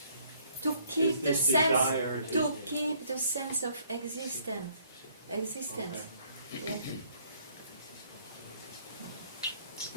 To keep Is the this desire sense, to- to keep the sense of existence. Existence. Yeah.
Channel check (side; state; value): both; inverted; correlation -0.63